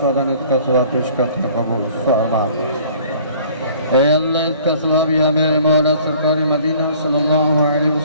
इसका सवाब पेश करते हैं, कबूल फरमा। ऐ अल्लाह, इसका सवाब या मेरे मौला सरकार मदीना सल्लल्लाहु अलैहि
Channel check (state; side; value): inverted; both; correlation -0.53